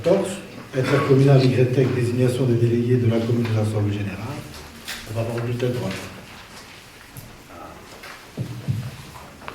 intercommunal YTEC, désignation des délégués de la commune de l'Assemblée générale. On va avoir le bulletin de droite.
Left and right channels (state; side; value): identical; both; correlation 1.00